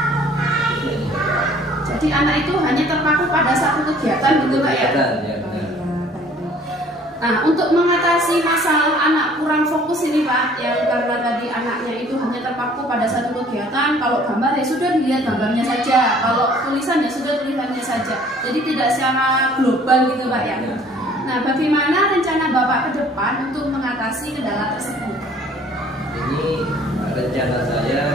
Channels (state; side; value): normal; both; correlation 0.55